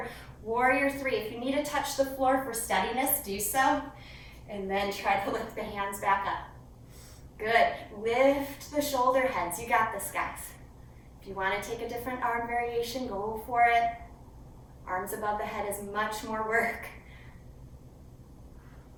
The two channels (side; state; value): both; identical; correlation 1.00